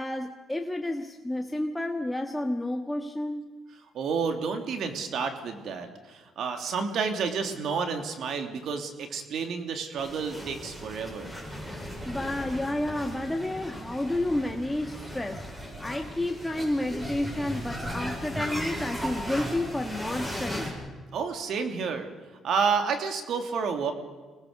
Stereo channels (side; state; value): both; normal; correlation 0.81